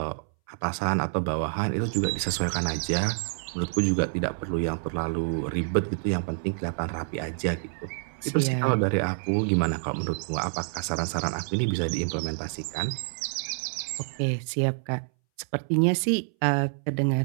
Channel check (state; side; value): silent; left; 60 dB below the other